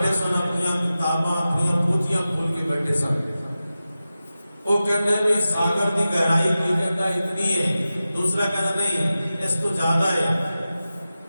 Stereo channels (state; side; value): inverted; both; correlation -0.94